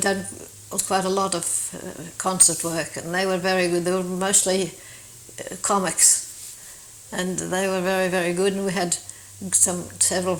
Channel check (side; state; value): both; identical; correlation 1.00